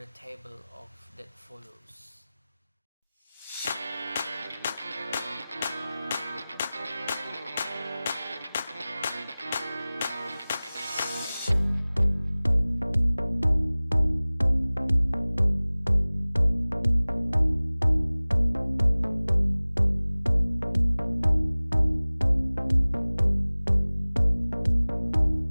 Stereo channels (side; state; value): both; inverted; correlation -0.99